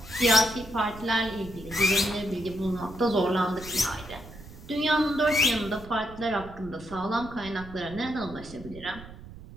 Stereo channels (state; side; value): noise; right; rumble, 16 dB below the sound